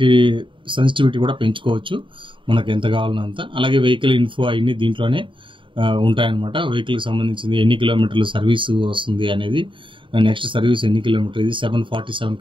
సెన్సిటివిటీ కూడా పెంచుకోవచ్చు మనకు ఎంత కావాలన్నంత. అలాగే వెహికల్ ఇన్ఫో అవన్నీ దీంట్లోనే ఉంటాయన్నమాట. వెహికల్కి సంబంధించింది ఎన్ని కిలోమీటర్లు సర్వీస్ వస్తుంది అనేది, నెక్స్ట్ సర్వీస్ ఎన్ని కిలోమీటర్, ఇది 747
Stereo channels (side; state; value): left; late; 0.24 ms